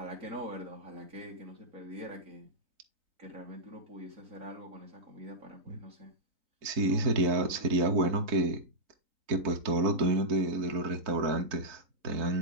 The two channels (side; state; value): left; late; 3.8 ms